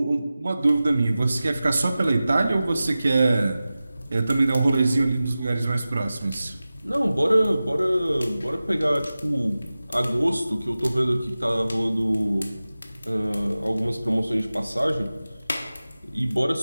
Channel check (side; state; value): both; inverted; correlation -0.96